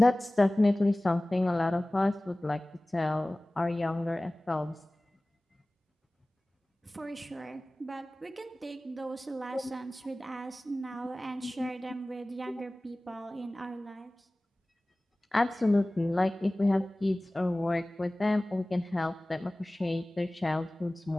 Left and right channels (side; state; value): both; normal; correlation 0.98